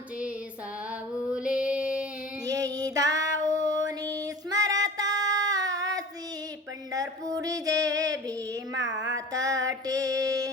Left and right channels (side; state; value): both; normal; correlation 0.39